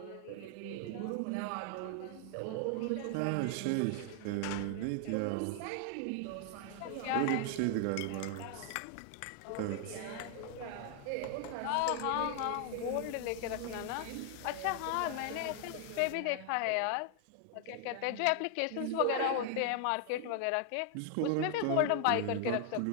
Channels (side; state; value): both; different; correlation 0.00